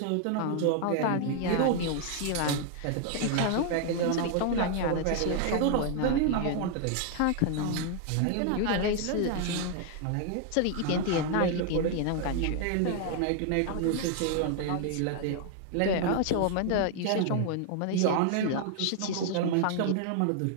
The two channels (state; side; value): different; both; correlation 0.00